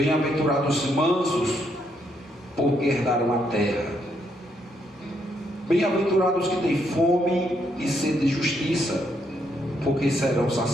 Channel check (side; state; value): both; normal; correlation 0.75